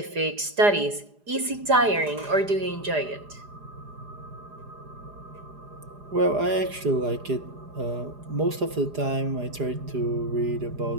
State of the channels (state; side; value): late; left; 4.9 ms